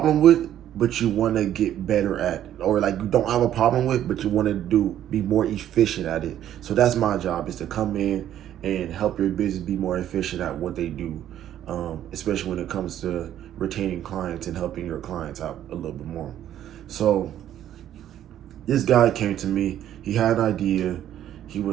with, but you want to get better at, or like you don't have a problem with, but you want to be more efficient at it. So that's my job, is to come in and help your business be more efficient at what they do, especially when it comes to retaining clients and helping your clients out a little bit more. So this guy came to me. He had an idea. He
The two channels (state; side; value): quieter; left; 11.3 dB